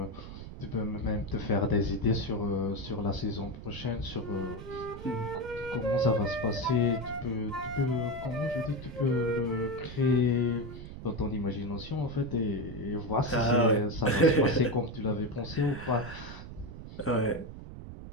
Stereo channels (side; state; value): right; noise; rumble, 12 dB below the sound